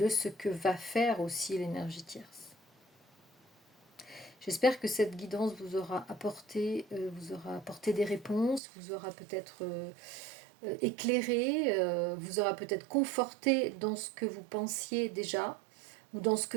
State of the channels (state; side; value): drops out; left; at 8.6 s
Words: ce que va faire aussi l'énergie tierce. J'espère que cette guidance vous aura apporté des réponses, vous aura peut-être éclairé, vous aura peut-être conforté dans ce que vous pensiez déjà ou dans ce que